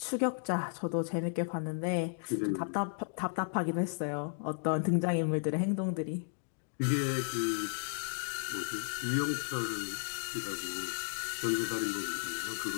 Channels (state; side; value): silent; right; digital silence